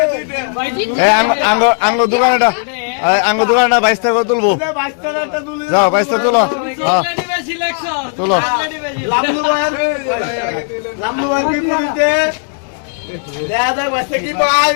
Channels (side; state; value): right; silent; 57 dB below the other